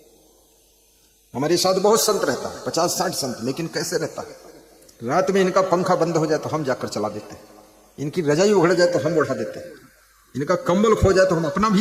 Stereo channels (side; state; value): both; identical; correlation 1.00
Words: हमारे साथ बहुत संत रहता है, 50-60 संत, लेकिन कैसे रहता है? रात में इनका पंखा बंद हो जाए तो हम जाकर चला देते हैं, इनकी रजाई उघड़ जाए तो हम ओढ़ा देते हैं, इनका कंबल खो जाए तो हम अपना भी